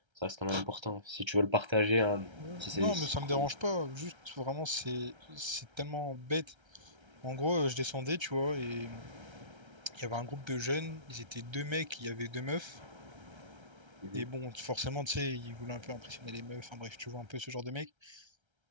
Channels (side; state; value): left; late; 1.3 ms